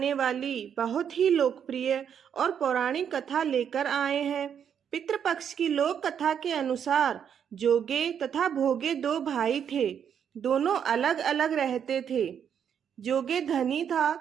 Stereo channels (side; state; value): left; quieter; 8.2 dB